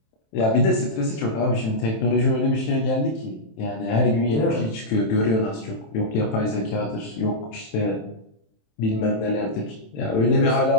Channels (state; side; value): late; right; 27 ms